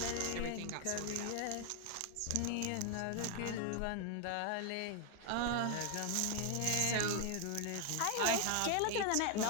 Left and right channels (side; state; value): both; different; correlation 0.00